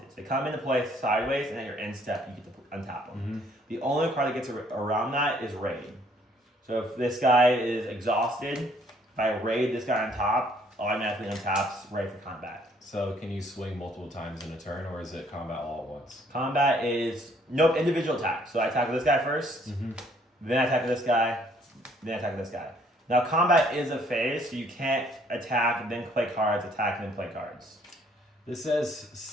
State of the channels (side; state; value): both; normal; correlation 0.63